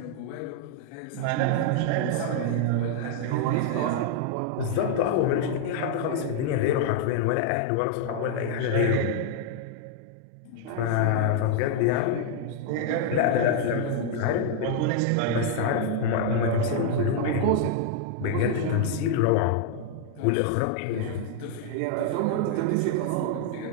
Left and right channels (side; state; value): both; different; correlation 0.00